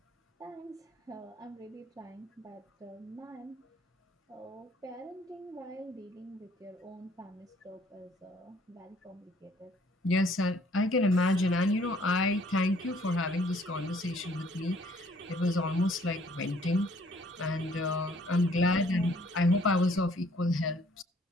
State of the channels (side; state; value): both; normal; correlation 0.61